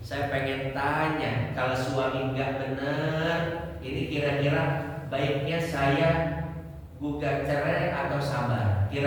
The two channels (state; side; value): identical; both; correlation 1.00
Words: saya pengen tanya, kalau suami nggak benar, ini kira-kira baiknya saya gugat cerai atau sabar?